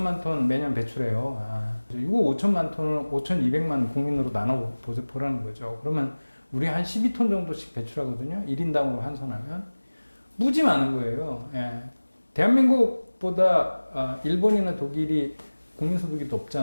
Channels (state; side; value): inverted; both; correlation -1.00